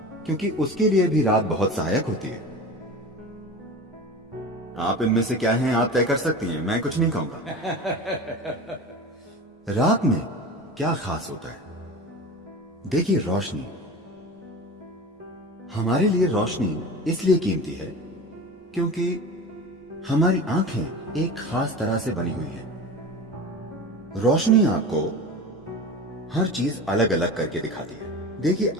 क्योंकि उसके लिए भी रात बहुत सहायक होती है। आप इनमें से क्या हैं आप तय कर सकती हैं, मैं कुछ नहीं कहूंगा। रात में क्या खास होता है? देखिए, रोशनी। हमारे लिए रोशनी इसलिए कीमती है क्योंकि हमारी आंखें एक खास तरह से बनी हुई हैं। रोशनी आपको हर चीज अलग अलग करके दिखाती है। देखिए,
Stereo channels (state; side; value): normal; both; correlation 0.32